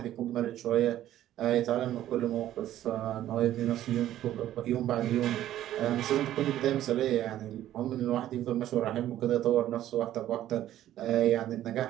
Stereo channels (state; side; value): quieter; left; 12.8 dB